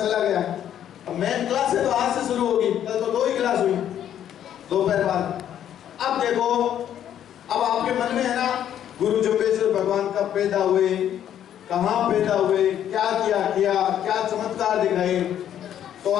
गया। अब मेन क्लास है तो आज से शुरू होगी, कल तो 2 ही क्लास हुई दोपहर बाद। अब देखो, अब आपके मन में है ना, गुरु जम्बेश्वर भगवान कब पैदा हुए, कहाँ पैदा हुए, क्या किया, क्या चमत्कार दिखाए। तो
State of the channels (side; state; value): right; quieter; 10.4 dB